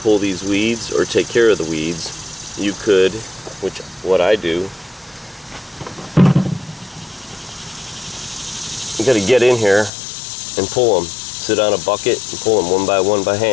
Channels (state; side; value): drops out; right; at 9.9 s